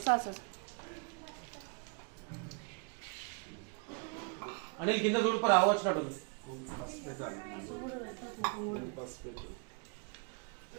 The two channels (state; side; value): quieter; left; 35.3 dB